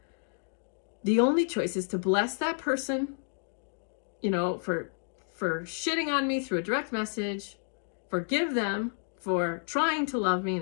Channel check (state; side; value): silent; right; digital silence